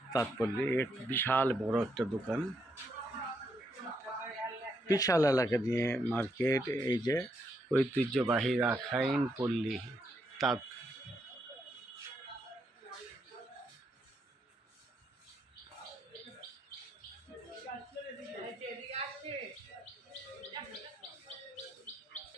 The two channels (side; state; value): both; normal; correlation 0.78